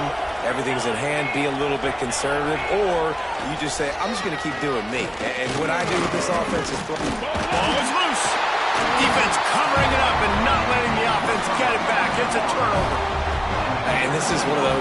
everything's in hand, be a little bit conservative, or you just say, I'm just going to keep doing me. And what I do with this offense is throw. Ball is loose. Defense covering it up and not letting the offense get it back. It's a turnover. And this is one of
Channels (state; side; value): identical; both; correlation 1.00